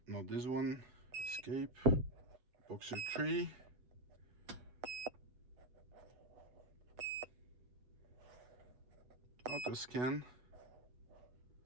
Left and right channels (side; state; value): left; late; 8.0 ms